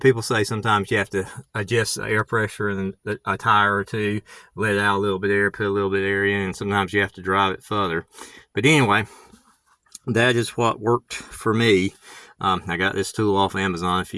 say sometimes you have to adjust the air pressure in a tire or two, let out a little bit of air, put a little bit of air in, and sometimes you have to drive it further. But anyway, that is what worked for me. I got this tool off Amazon a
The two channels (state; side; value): identical; both; correlation 1.00